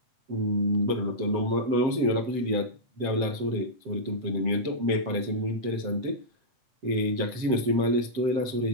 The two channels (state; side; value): late; left; 7.6 ms